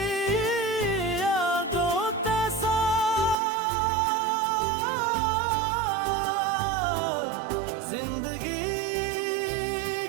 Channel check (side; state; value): left; drops out; at 3.4 s